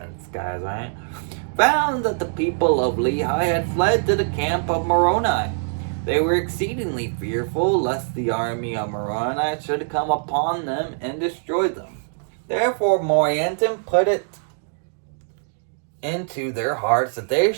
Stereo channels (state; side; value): silent; left; digital silence